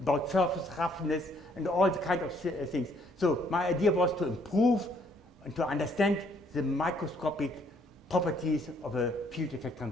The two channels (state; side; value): normal; both; correlation 0.66